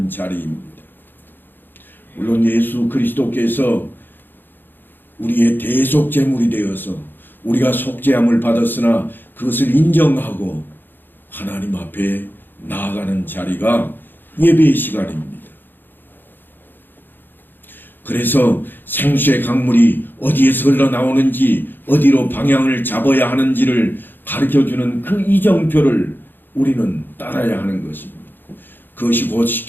자리입니다. 물론 예수 그리스도께서 우리의 대속 제물이 되어서 우리가 속죄함을 받았으나 그것을 인정하고 하나님 앞에 나아가는 자리가 예배의 시간입니다. 그래서 생수의 강물이 어디에서 흘러나오는지 어디로 방향을 잡아야 하는지를 가르쳐주는 그 이정표를 우리는 따라야 하는 것입니다. 그것이 곧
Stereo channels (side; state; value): right; late; 0.094 ms